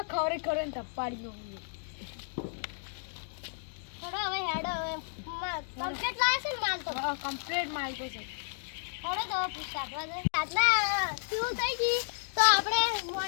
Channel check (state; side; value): silent; right; digital silence